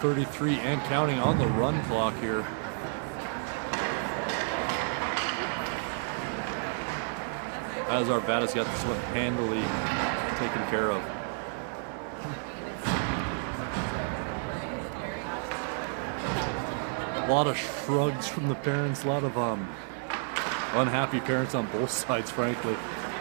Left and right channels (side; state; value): left; silent; 57 dB below the other